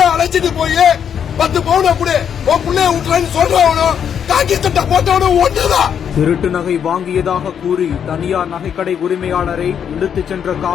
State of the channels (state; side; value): quieter; right; 8.2 dB